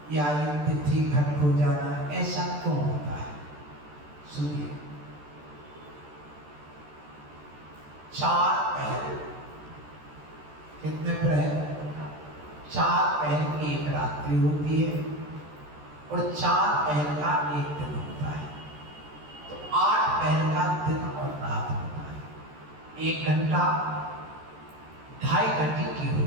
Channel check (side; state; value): left; late; 13 ms